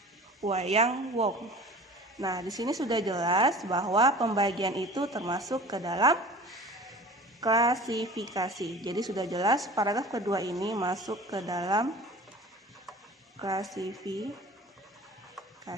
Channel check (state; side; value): normal; both; correlation 0.41